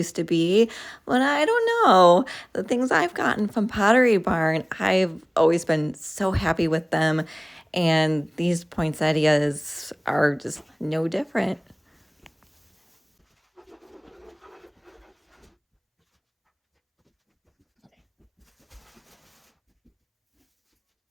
to be, but I don't know. The things I've gotten from Pottery Barn, I've always been so happy with them, and these poinsettias are just no different.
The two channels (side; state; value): both; identical; correlation 1.00